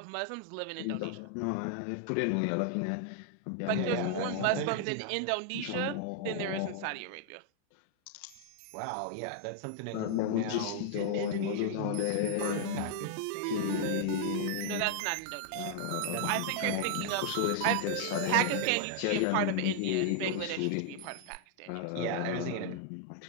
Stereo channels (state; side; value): different; both; correlation 0.00